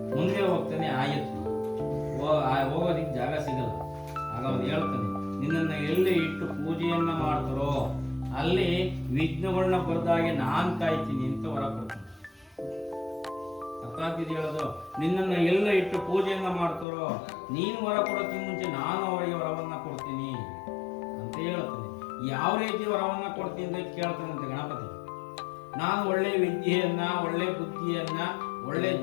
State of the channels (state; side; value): drops out; right; at 16.9 s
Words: ಮುಂದೆ ಹೋಗ್ತಾನೆ ಆಯುತ್ತೆ. ಹೋಗೋದಿಕ್ಕೆ ಜಾಗ ಸಿಗಲ್ಲ. ಆಗ ಅವನು ಹೇಳ್ತಾನೆ, ನಿನ್ನನ್ನ ಎಲ್ಲಿ ಇಟ್ಟು ಪೂಜೆಯನ್ನ ಮಾಡ್ತಾರೋ ಅಲ್ಲಿ ವಿಘ್ನಗಳನ್ನ ಬರ್ದಾಗೆ ನಾನ್ ಕಾಯ್ತೀನಿ ಅಂತ ಹೊರ ಕೊಡ್ತಾನೆ. ಅರ್ಥ ಆಗ್ತಿದೆ ಹೇಳೋದು? ನಿನ್ನನ್ನ ಎಲ್ಲ ಇಟ್ಟು ಪೂಜೆಯನ್ನ ಮಾಡ್ತಾರೋ ನೀನು ಹೊರ ಕೊಡೋಕ್ಕಿಂತ ಮುಂಚೆ ನಾನು ಅವರಿಗೆ ವರವನ್ನ ಕೊಡ್ತೀನಿ ಅಂತ ಹೇಳ್ತಾನೆ. ಯಾವ ರೀತಿ ವರವನ್ನ ಕೊಡ್ತೀನಿ ಅಂತ ಕೇಳ್ತಾನಂತೆ ಗಣಪತಿ. ನಾನು ಒಳ್ಳೆ ವಿದ್ಯೆಯನ್ನ, ಒಳ್ಳೆ ಬುದ್ಧಿಯನ್ನ, ಒಳ್ಳೆ